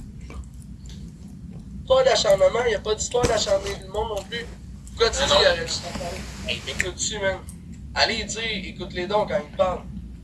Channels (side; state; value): both; identical; correlation 1.00